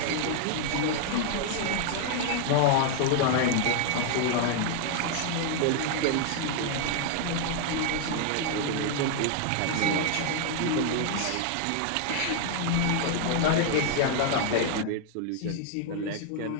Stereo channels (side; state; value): both; different; correlation 0.00